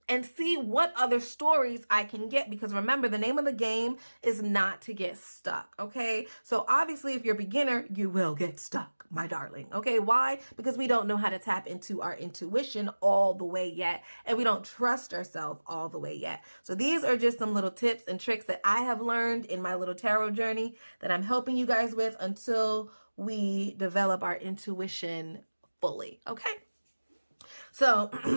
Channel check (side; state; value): both; inverted; correlation -1.00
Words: and see what other stories I can get, because remember, the name of the game is not to get stuck, okay? So obviously, if you're a beginner, you will get stuck, my darling, okay? Why? Because we don't know how to tap into our intuition all the way yet, and we don't trust ourselves all the way yet. So these are just some little tips and tricks that I have learned in my little tarot journey that I'm helping you guys with until we develop our intuition fully, okay? So